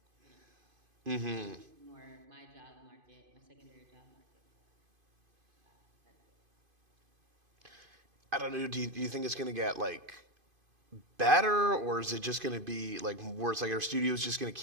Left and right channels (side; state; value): left; late; 2.5 ms